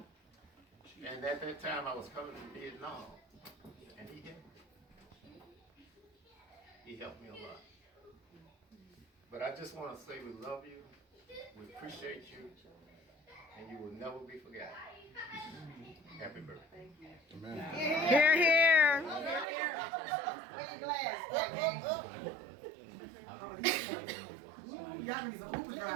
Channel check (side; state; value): left; drops out; at 19.5 s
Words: And at that time, I was coming from Vietnam, and he helped me. He helped me a lot. But I just want to say we love you, we appreciate you, and you will never be forgotten. Happy birthday. Amen. Here, here. Where your glass? Y'all need some Uber